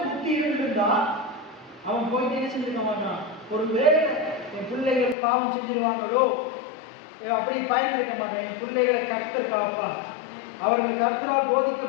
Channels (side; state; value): right; drops out; at 5.2 s